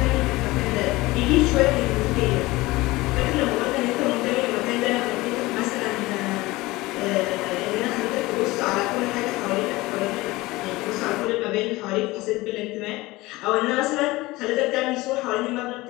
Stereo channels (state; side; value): quieter; right; 20.3 dB